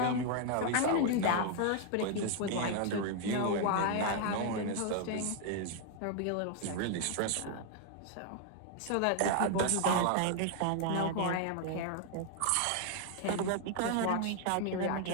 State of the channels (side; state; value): both; different; correlation 0.00